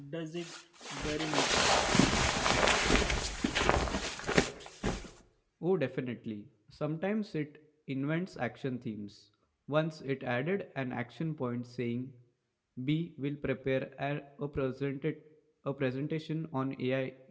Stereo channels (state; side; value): identical; both; correlation 1.00